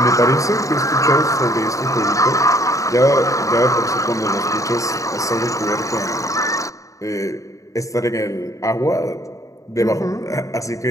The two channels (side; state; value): right; late; 0.16 ms